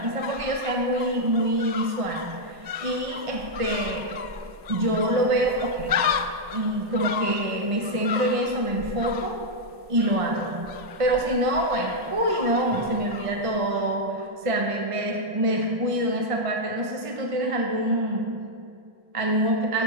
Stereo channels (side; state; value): left; late; 1.5 ms